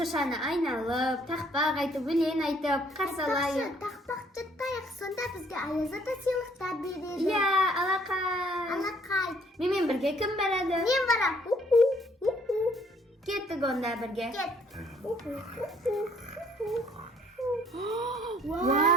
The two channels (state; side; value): normal; both; correlation 0.62